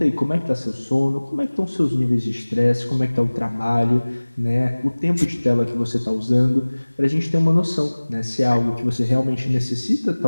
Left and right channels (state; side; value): inverted; both; correlation -1.00